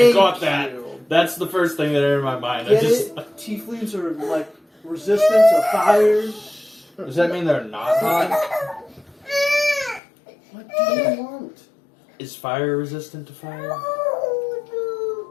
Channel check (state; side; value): drops out; right; at 10.0 s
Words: got that. you. That's the first thing that entered my mind. I Get just. it? Tieflings are like resistant to fire. Does that mean they're not hot? What do you want? Is fire resistant to fire?